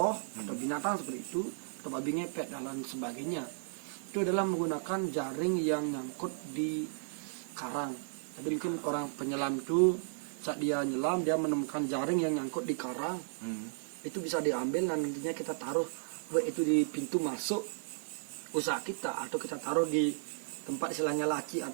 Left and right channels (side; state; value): left; silent; digital silence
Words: atau binatang seperti itu, atau babi ngepet dan lain sebagainya. Itu adalah menggunakan jaring yang nyangkut di karang. Jadi mungkin orang penyelam itu saat dia nyelam dia menemukan jaring yang nyangkut di karang, itu bisa diambil dan nantinya kita taruh baik itu di pintu masuk usaha kita atau kita taruh di tempat istilahnya laci